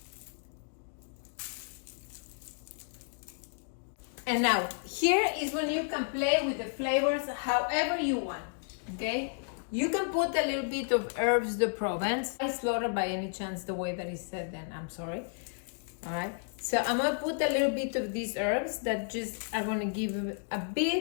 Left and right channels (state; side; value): silent; right; digital silence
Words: And now, here is when you can play with the flavors however you want, okay? You can put a little bit of herbs de Provence. I slaughtered by any chance the way that it said then, I'm sorry. All right, so I'm gonna put a little bit of these herbs that just are gonna give a